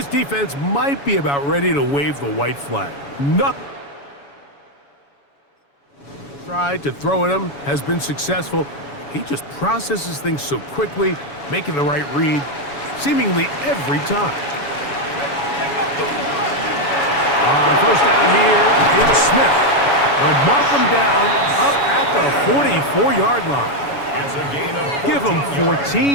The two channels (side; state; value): right; late; 7.1 ms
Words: defense might be about ready to wave the white flag. Nothing. Tried to throw at him, has been successful. He just processes things so quickly, making the right read, seemingly every time. On 1st down here, it's Smith. They'll mark him down up at the 44-yard line. It's a gain of 14 Give him